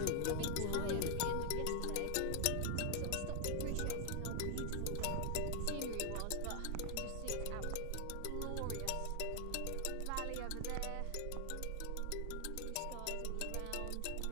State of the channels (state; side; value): different; both; correlation 0.00